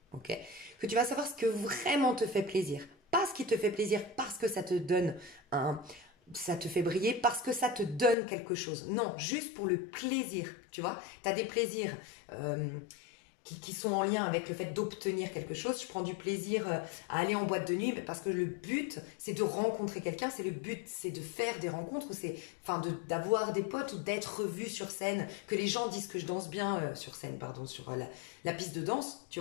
ok, que tu vas savoir ce que vraiment te fait plaisir. Pas ce qui te fait plaisir parce que ça te donne ça te fait briller, parce que ça te donne quelque chose. Non, juste pour le plaisir, tu vois. Tu as des plaisirs qui sont en lien avec le fait d'obtenir quelque chose. Je prends du plaisir à aller en boîte de nuit parce que le but, c'est de rencontrer quelqu'un. C'est le but, c'est de faire des rencontres, d'avoir des potes ou d'être vu sur scène, que les gens disent que je danse bien sur scène, pardon, sur la piste de danse, tu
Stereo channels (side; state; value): right; drops out; at 8.2 s